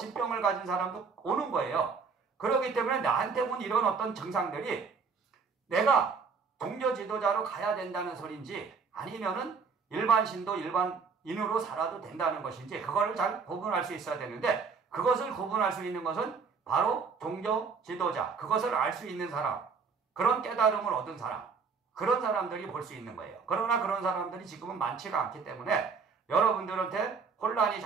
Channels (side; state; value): left; quieter; 5.3 dB